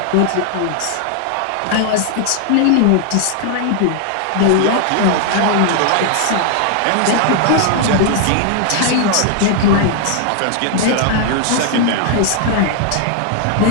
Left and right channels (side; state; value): both; different; correlation 0.00